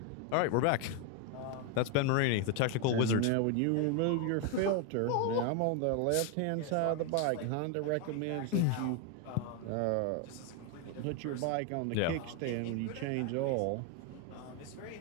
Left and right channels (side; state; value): both; different; correlation 0.01